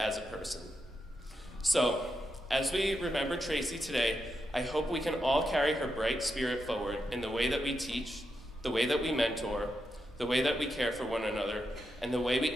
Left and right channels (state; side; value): normal; both; correlation 0.85